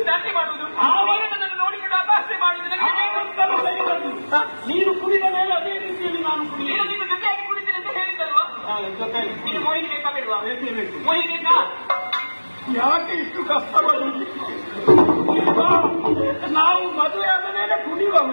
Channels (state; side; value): inverted; both; correlation -1.00